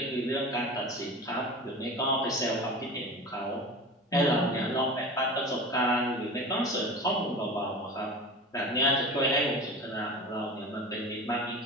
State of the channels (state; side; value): normal; both; correlation 0.33